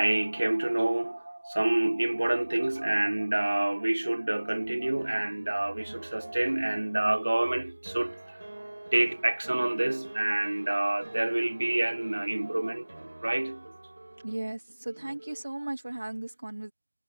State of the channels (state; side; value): inverted; both; correlation -1.00